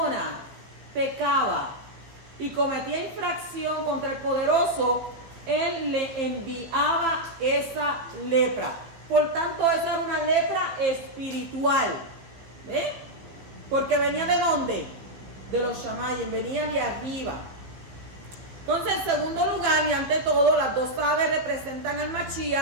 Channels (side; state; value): left; late; 15 ms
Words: pecaba y cometía infracción contra el poderoso, él le enviaba esa lepra. Por tanto, esa era una lepra espiritual. ¿Eh? Porque venía ¿de dónde? De los Shamayim, venía de arriba. Entonces, en segundo lugar, y ante todo, las 2 aves representan al